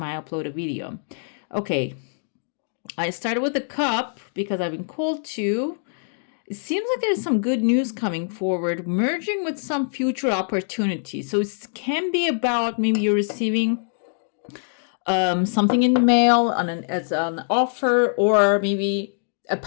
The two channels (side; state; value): right; silent; digital silence